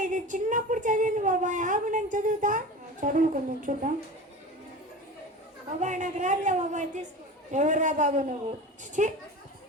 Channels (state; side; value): normal; both; correlation 0.32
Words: ఇది చిన్నప్పుడు చదివింది బాబాయ్, ఆగు నేను చదువుతా. చదువు కొంచెం చూద్దాం. బాబాయ్ నాకు రాదులే బాబాయ్, తీసుకో. ఎవరురా బాబు నువ్వు? చిచి,